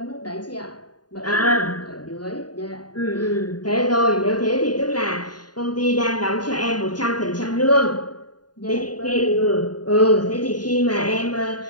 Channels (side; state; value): right; late; 0.70 ms